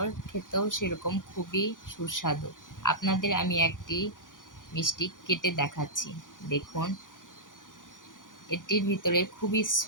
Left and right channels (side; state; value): right; late; 0.88 ms